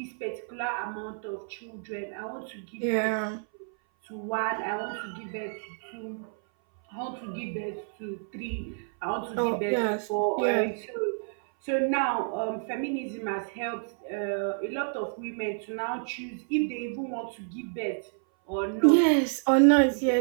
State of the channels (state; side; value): silent; left; 58 dB below the other